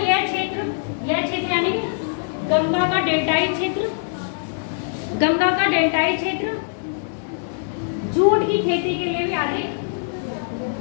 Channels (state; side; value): silent; right; 64 dB below the other